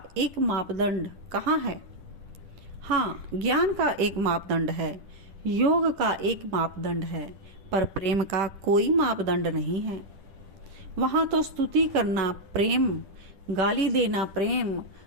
एक मापदंड कहाँ है। हाँ, ज्ञान का एक मापदंड है, योग का एक मापदंड है, पर प्रेम का कोई मापदंड नहीं है। वहाँ तो स्तुति करना प्रेम, गाली देना प्रेम,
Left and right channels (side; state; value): left; late; 10 ms